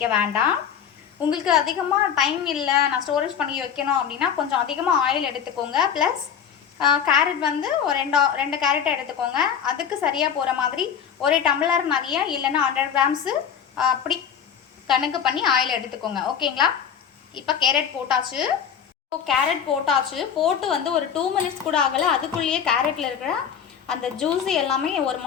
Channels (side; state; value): right; quieter; 8.0 dB